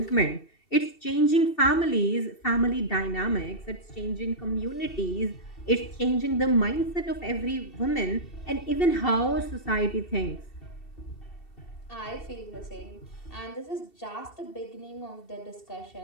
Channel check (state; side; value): late; right; 2.7 ms